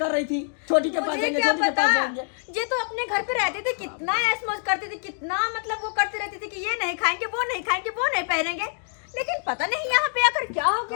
रही थी छोटी के पास मुझे जाएंगे, क्या छोटी के पता, पास जाएंगे। ये तो अपने घर पे रहते थे, कितना ऐश मौज करते थे, कितना मतलब वो करते रहते थे कि ये नहीं खाएंगे, वो नहीं खाएंगे, वो नहीं पहनेंगे। लेकिन पता नहीं यहाँ पे आकर क्या हो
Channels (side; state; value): right; silent; digital silence